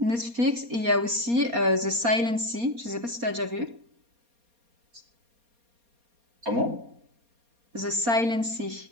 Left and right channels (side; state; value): left; late; 4.2 ms